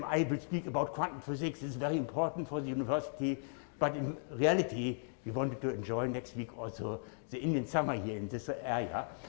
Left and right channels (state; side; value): silent; right; digital silence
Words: I will speak about quantum physics. It's very important for the university. But in reality, we wanted to enjoy next week also the Indian summer here in this area.